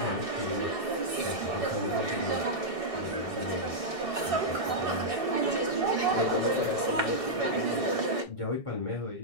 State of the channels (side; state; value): right; late; 1.6 ms